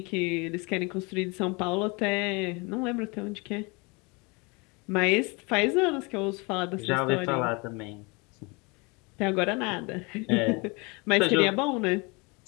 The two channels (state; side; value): quieter; right; 28.5 dB